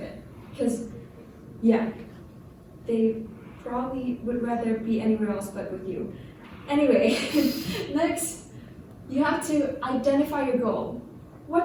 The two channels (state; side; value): identical; both; correlation 1.00